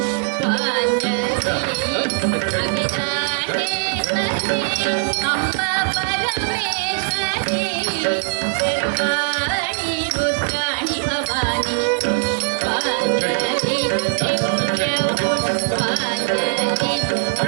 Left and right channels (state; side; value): silent; left; digital silence